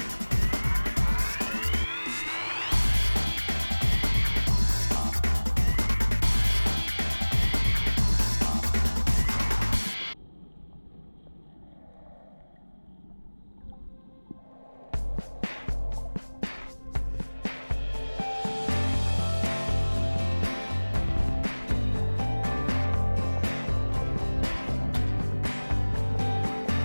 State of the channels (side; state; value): both; inverted; correlation -1.00